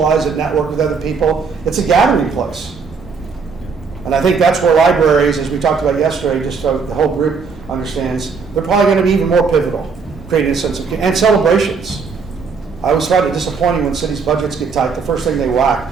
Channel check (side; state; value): left; quieter; 5.2 dB